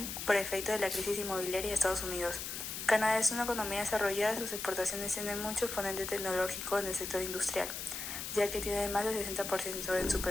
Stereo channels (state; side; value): noise; left; hiss, 6 dB below the sound